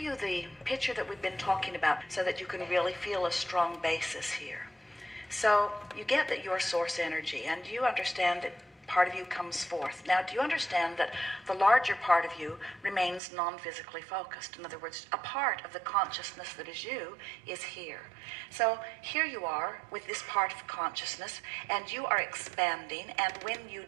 the picture that we've been talking about so that you can really feel a strong basis here. So you get that you're source energy, and you understand that part of you comes forth. Now, do you understand that the larger part of you remains non-physically focused? In other words, a part of the consciousness that is you is here. So here you are with this part of consciousness, and you are expanding, and when you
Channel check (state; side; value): drops out; left; at 13.2 s